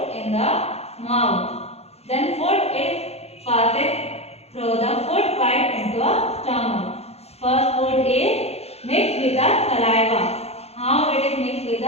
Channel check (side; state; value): right; late; 0.30 ms